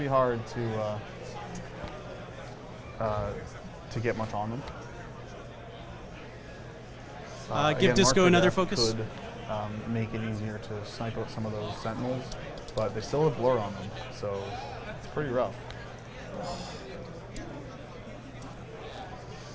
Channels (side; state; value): both; identical; correlation 1.00